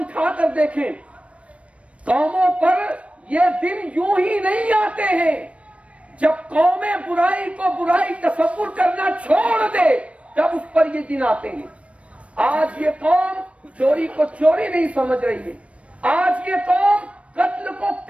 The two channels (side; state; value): left; late; 0.063 ms